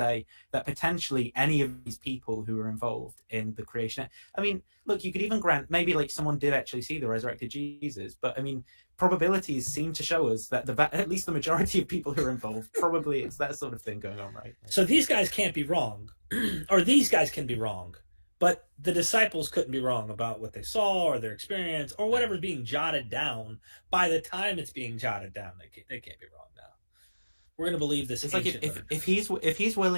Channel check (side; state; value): both; inverted; correlation -1.00